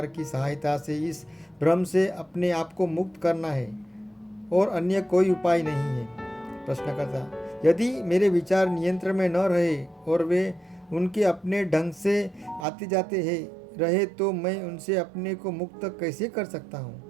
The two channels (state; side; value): drops out; left; at 12.7 s